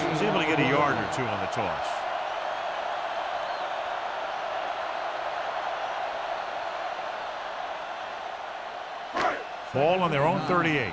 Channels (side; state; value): both; identical; correlation 1.00